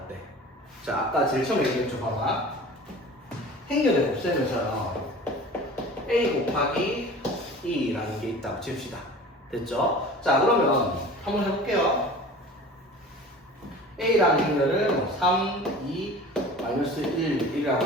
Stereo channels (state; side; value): normal; both; correlation 0.40